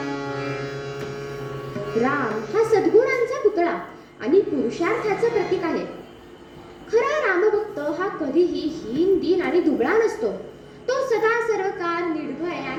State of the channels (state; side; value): identical; both; correlation 1.00